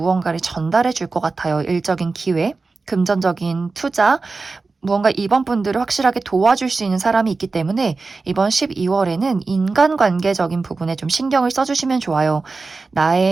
전달해 줄 것 같아요. 일적인 기회, 금전적인 투자, 무언가 이번 분들을 확실하게 도와줄 수 있는 사람이 있기 때문에 이번 12월에는 인간관계적인 부분에 좀 신경을 써주시면 좋아요.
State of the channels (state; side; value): quieter; left; 4.0 dB